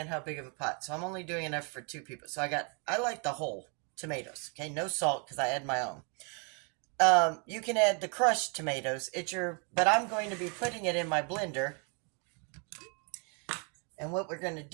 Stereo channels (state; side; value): quieter; left; 36.4 dB